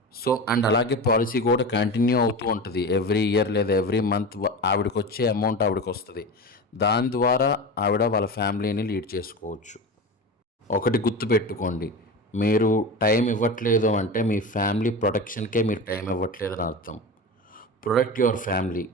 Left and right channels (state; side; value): normal; both; correlation 0.27